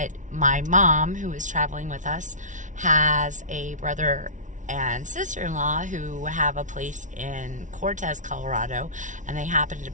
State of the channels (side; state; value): left; late; 0.37 ms